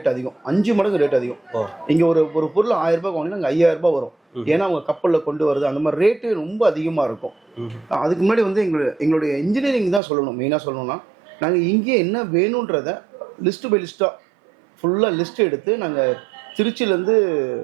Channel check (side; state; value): left; drops out; at 10.0 s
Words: அதிகம். 5 மடங்கு ரேட் அதிகம். இங்கே ஒரு பொருள் 1000 ரூபாய் வாங்கினா அங்கே 5000 ரூபாய் வரும். ஏன்னா அவங்க கப்பலில் கொண்டு வருது. அந்த மாதிரி ரேட்டு ரொம்ப அதிகமாக இருக்கும். அதுக்கு முன்னாடி எங்களுடைய இன்ஜினியரிங் தான் சொல்லணும். மெயினாக சொல்லணும்னா, நாங்கள் இங்கே என்ன வேணுன்றதை லிஸ்ட்டு பை லிஸ்ட்டாக ஃபுல்லாக லிஸ்ட் எடுத்து நாங்கள் திருச்சியிலேருந்து